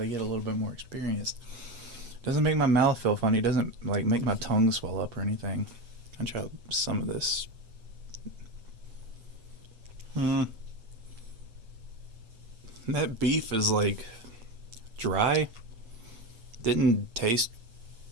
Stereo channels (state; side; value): late; left; 8.5 ms